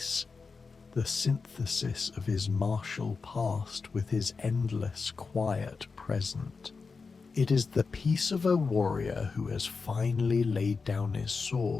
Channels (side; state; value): right; quieter; 4.7 dB